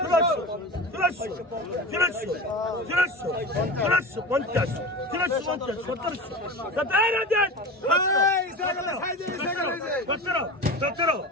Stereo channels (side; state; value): both; normal; correlation 0.29